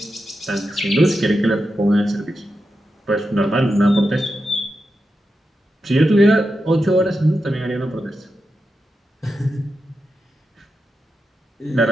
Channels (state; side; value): normal; both; correlation 0.88